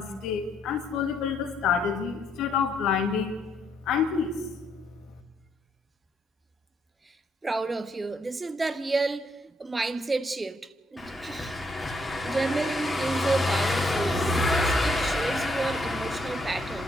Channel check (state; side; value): normal; both; correlation 0.74